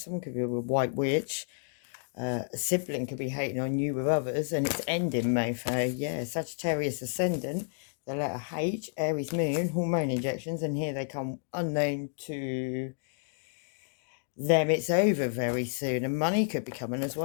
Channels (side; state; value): right; silent; digital silence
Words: could be a white witch. A sibling could be hating on you with others, and it's ending, mofo. Yeah, Sagittarius ascendant, the letter H, Aries moon, hormone injections, and here they come unknown to them. It's over very soon, and money could be coming as